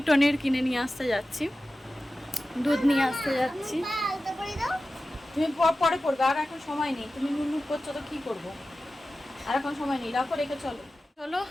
টনির কিনে নিয়ে আসতে যাচ্ছি, দুধ নিয়ে আসতে যাচ্ছি। তুমি পরে পড়বে, আর এখন সময় নেই। তুমি নুনুক করছো তো কী করবো, আর এখন সময় নেই। রাখো, রেখে চলো চলো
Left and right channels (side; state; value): both; normal; correlation 0.94